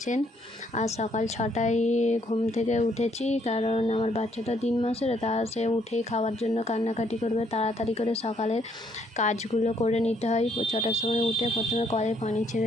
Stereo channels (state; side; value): normal; both; correlation 0.69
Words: আজ সকাল 6টায় ঘুম থেকে উঠেছি, কারণ আমার বাচ্চাটা 3 মাসের। তা সে উঠেই খাওয়ার জন্য কান্নাকাটি করবে। তাড়াতাড়ি করে সকালের কাজগুলো করে নিতে হয়। 6টার সময় উঠে প্রথমে কলে পানি